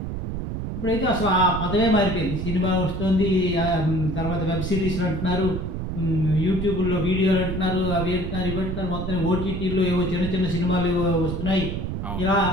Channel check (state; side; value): noise; right; rumble, 4 dB below the sound